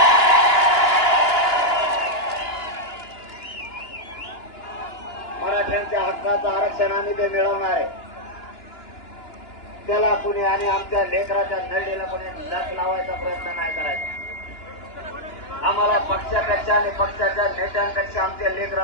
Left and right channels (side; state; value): right; late; 2.9 ms